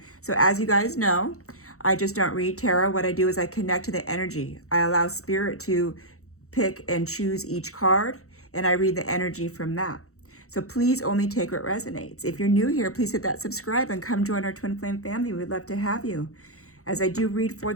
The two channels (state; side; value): late; right; 0.64 ms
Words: So as you guys know, I just don't read tarot. What I do is I connect to the energy. I allow spirit to pick and choose each card, and I read the energy from that. So please only take what resonates. If you're new here, please hit that subscribe and come join our Twin Flame family. We'd love to have you. As I do read for